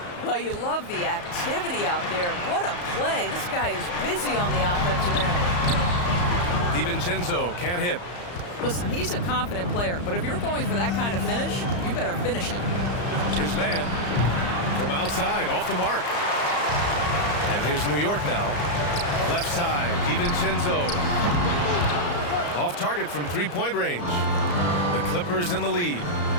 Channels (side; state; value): right; late; 34 ms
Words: Well, you love the activity out there. What a play. This guy is busy on the offensive end. DiVincenzo can't hit. Listen, he's a confident player, but if you're going for that kind of finish, you better finish it. Here's man from outside, off the mark. And here's New York now. Left side, DiVincenzo. Off target from 3-point range. The Clippers in the lead.